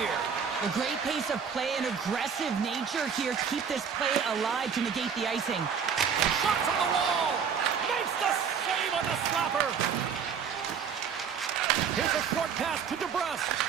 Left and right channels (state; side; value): quieter; left; 6.9 dB